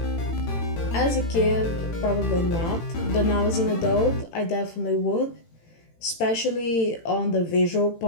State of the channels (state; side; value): late; right; 18 ms